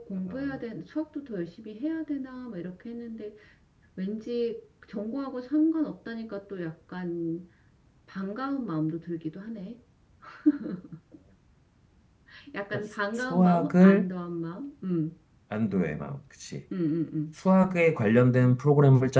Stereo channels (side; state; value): both; identical; correlation 1.00